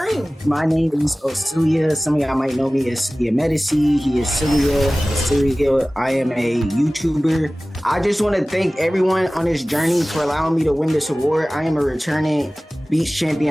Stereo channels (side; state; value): both; normal; correlation 0.98